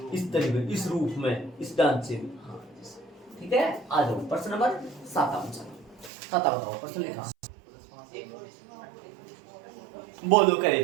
इस तरीके, इस रूप में, इस ढांचे में, ठीक है। आ जाओ प्रश्न नंबर 7 बताओ, प्रश्न लिखा, बोलो करे,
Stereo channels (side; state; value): left; drops out; at 6.1 s